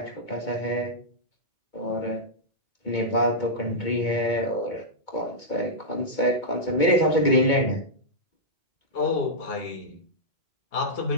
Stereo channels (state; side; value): late; right; 2.2 ms